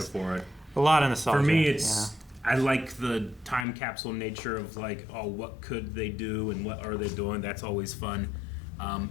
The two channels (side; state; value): right; drops out; at 3.7 s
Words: for it. A lot of nostalgia. For me, it's I like the time capsule nature of like, oh, what could they do and what are they doing? That's always fun.